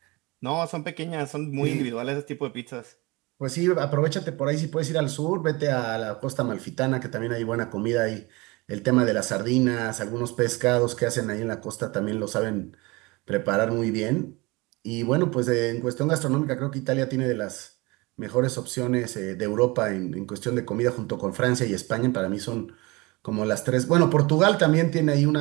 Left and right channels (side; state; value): left; quieter; 24.3 dB